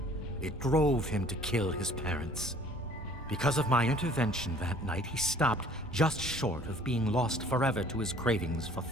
It drove him to kill his parents. Because of my intervention that night, he stopped just short of being lost forever to his cravings for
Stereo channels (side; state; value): both; normal; correlation 0.53